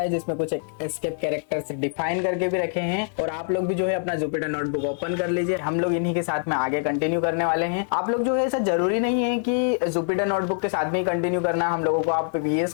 जिसमें कुछ एस्केप कैरेक्टर्स डिफाइन करके भी रखे हैं और आप लोग भी जो है अपना जुपिटर नोटबुक ओपन कर लीजिए। हम लोग इन्हीं के साथ में आगे कंटिन्यू करने वाले हैं। आप लोग जो है ऐसा जरूरी नहीं है कि जुपिटर नोटबुक के साथ में ही कंटिन्यू करना। हम लोगों को आप VS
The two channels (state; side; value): silent; right; digital silence